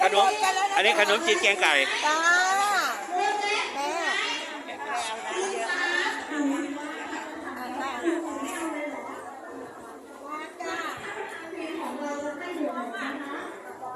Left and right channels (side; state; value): both; identical; correlation 1.00